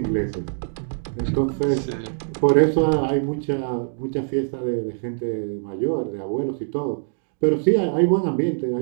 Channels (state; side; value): silent; left; digital silence